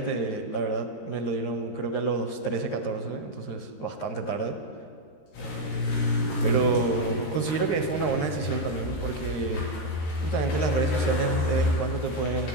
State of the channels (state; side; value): late; right; 13 ms